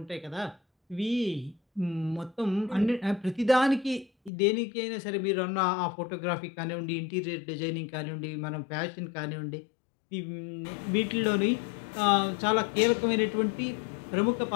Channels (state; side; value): drops out; right; at 4.3 s